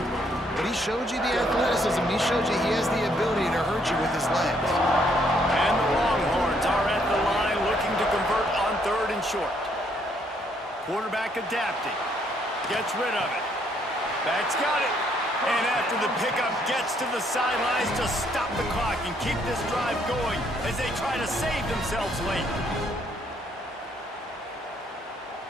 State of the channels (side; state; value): both; normal; correlation 0.69